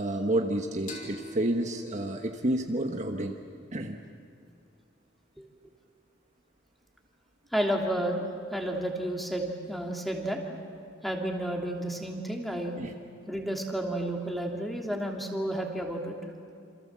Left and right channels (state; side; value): normal; both; correlation 0.67